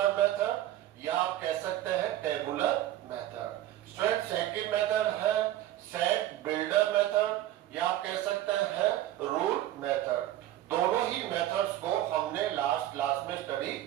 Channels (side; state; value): left; quieter; 13.6 dB